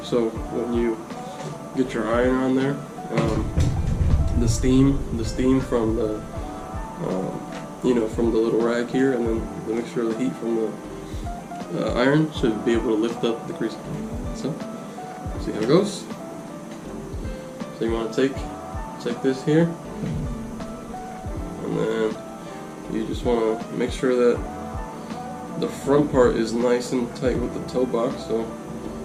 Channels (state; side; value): identical; both; correlation 1.00